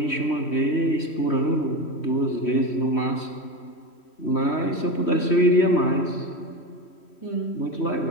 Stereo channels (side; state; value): right; late; 3.1 ms